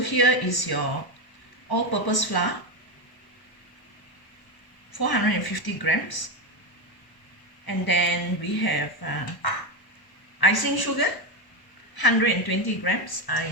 is your all-purpose flour, 450 grams, and then we have icing sugar, 120 grams. I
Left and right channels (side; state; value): right; late; 1.0 ms